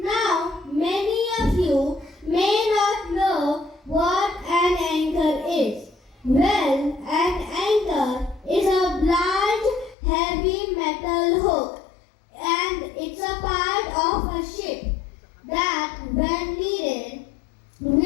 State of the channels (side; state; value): right; drops out; at 10.0 s